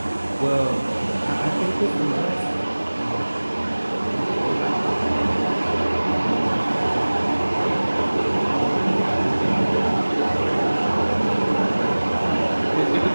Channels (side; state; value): both; inverted; correlation -1.00